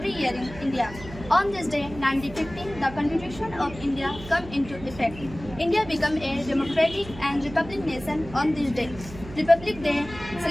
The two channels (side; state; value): right; noise; hum, 15 dB below the sound